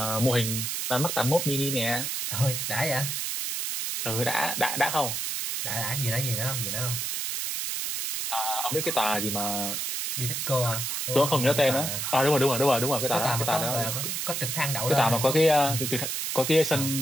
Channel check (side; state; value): right; noise; hiss, 2 dB below the sound